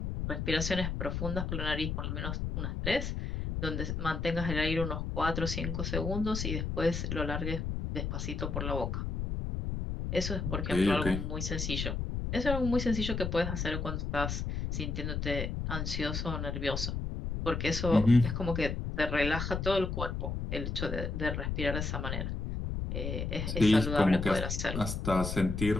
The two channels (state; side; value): noise; left; rumble, 3 dB below the sound